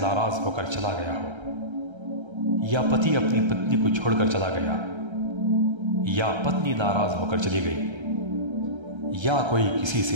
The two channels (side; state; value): left; late; 1.3 ms